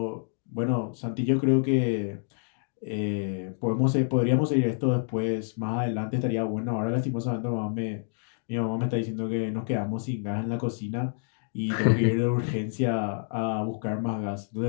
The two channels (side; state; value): right; silent; digital silence